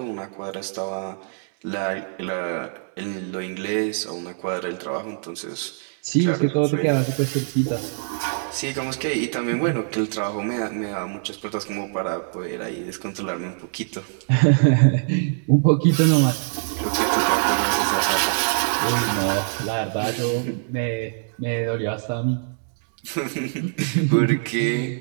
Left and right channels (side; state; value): left; silent; digital silence